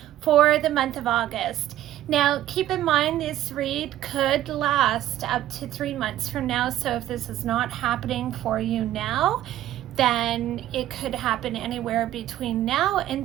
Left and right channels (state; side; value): quieter; left; 13.1 dB